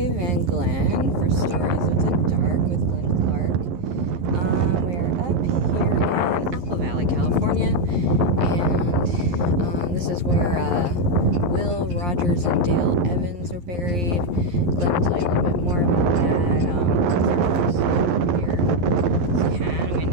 and Glen for Stories of the Dark with Glen Clark. We're up here in Apple Valley, California, and this is where Will Rogers and Dale Evans are buried. Glen will tell you a little bit more about that. Here, it's kind of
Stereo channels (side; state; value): left; late; 11 ms